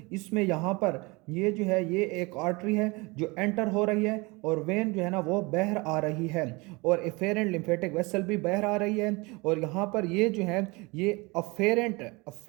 इसमें यहाँ पर ये जो है ये एक आर्टरी है जो एंटर हो रही है और वेन जो है ना वो बाहर आ रही है और एफेरेंट लिम्फेटिक वेसल भी बाहर आ रही है। और यहाँ पर ये जो है ये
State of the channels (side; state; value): left; quieter; 25.8 dB